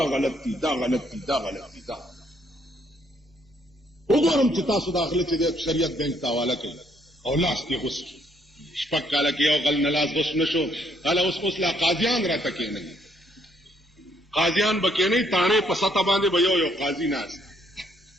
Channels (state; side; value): normal; both; correlation 0.69